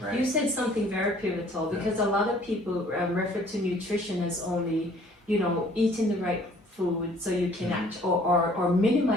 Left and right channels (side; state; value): both; normal; correlation 0.56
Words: You said something very pivotal because a lot of people refer to nutrition as only, eating the right food so you can act or